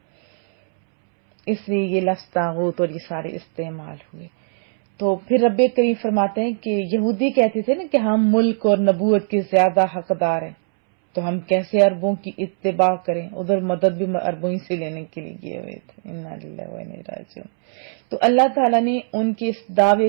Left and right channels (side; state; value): left; silent; 65 dB below the other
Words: اس لیے یہ لفظ طاغوت اور یہ سارے استعمال ہوئے. تو پھر رب کریم فرماتے ہیں کہ یہودی کہتے تھے نا کہ ہم ملک اور نبوت کے زیادہ حقدار ہیں، تو ہم کیسے عربوں کی اتباع کریں، ادھر مدد بھی عربوں ہی سے لینے کے لیے گئے ہوئے تھے. انا للہ و انا الیہ راجعون. تو اللہ تعالیٰ نے ان کے اس دعوے